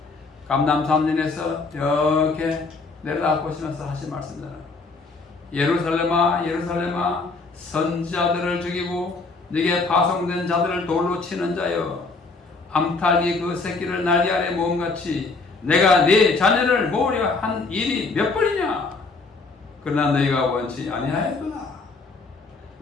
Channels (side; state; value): right; quieter; 3.9 dB